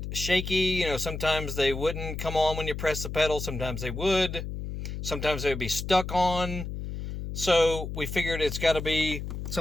shaky. You know, sometimes they wouldn't come on when you press the pedal. Sometimes they would. Sometimes they would be stuck on. So we figured it's got to be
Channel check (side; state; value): left; noise; hum, 6 dB below the sound